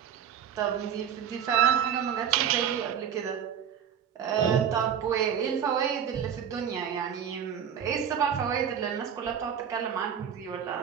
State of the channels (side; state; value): left; quieter; 8.5 dB